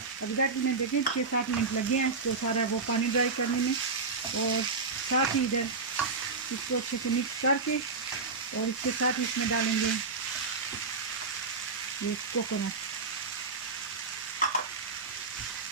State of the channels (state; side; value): quieter; left; 4.3 dB